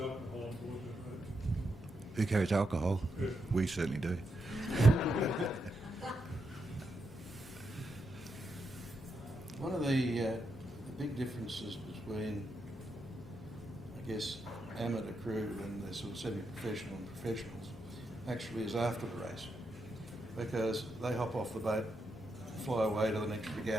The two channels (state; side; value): normal; both; correlation 0.83